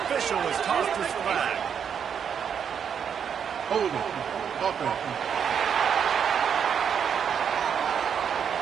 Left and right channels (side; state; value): left; quieter; 7.6 dB